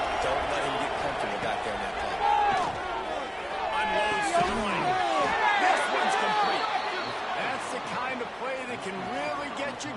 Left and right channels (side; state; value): both; identical; correlation 1.00